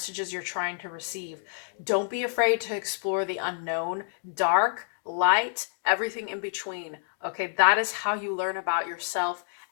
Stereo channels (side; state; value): right; silent; digital silence